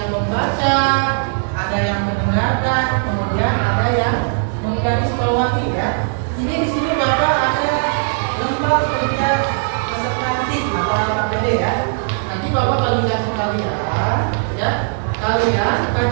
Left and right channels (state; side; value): silent; left; 67 dB below the other